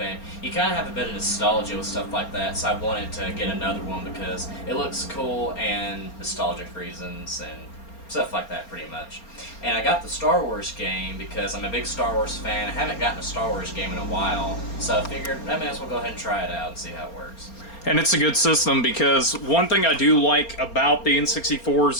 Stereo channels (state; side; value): late; right; 4.3 ms